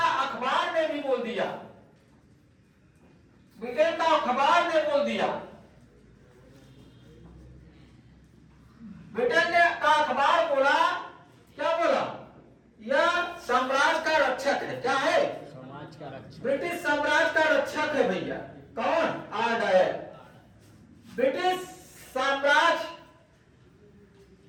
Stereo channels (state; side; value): identical; both; correlation 1.00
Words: अखबार ने भी बोल दिया, ब्रिटेन का अखबार ने बोल दिया, ब्रिटेन का अखबार बोला, क्या बोला? यह साम्राज्य का रक्षक है। क्या है? समाज का रक्षक। ब्रिटिश साम्राज्य का रक्षक है भैया। कौन? आर्डायर। ब्रिटिश साम्राज्य